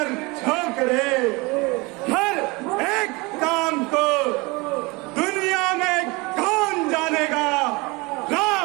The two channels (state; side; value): quieter; left; 25.4 dB